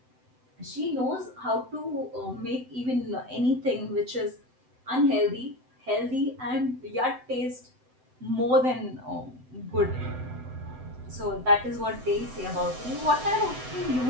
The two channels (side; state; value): left; late; 7.9 ms